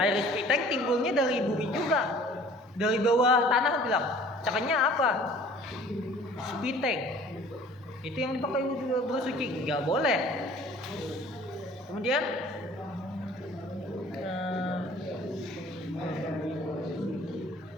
spitek timbulnya dari bumi juga, dari bawah tanah bilang. Caranya apa? Spitek. Itu yang dipakai bersuci, nggak boleh. Kemudian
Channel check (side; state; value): both; normal; correlation 0.50